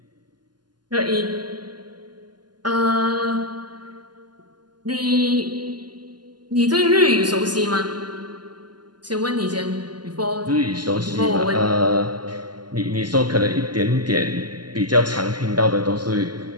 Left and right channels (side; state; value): left; late; 0.70 ms